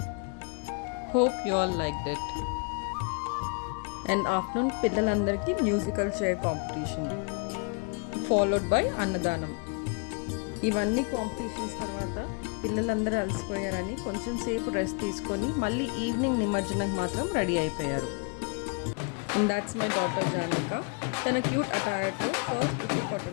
Hope you all liked it. And afternoon పిల్లలందరికీ musical chair competition followed by అన్నదానం. ఇవన్నీ కాంపిటీషన్స్ తర్వాత పిల్లలందరూ అలసిపోయారని కొంచెం సేపు రెస్ట్ తీసుకొని మళ్ళీ ఈవినింగ్ నిమజ్జనంకి మాత్రం రెడీ అయిపోయారు. And that's my daughter Janvika. తన క్యూట్ అటైర్తో ఫస్ట్ ఉట్టి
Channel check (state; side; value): quieter; right; 34.0 dB